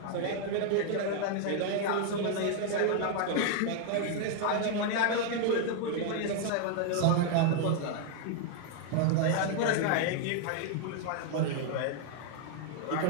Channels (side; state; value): both; different; correlation 0.00